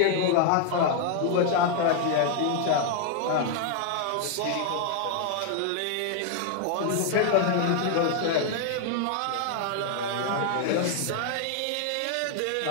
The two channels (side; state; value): both; different; correlation 0.00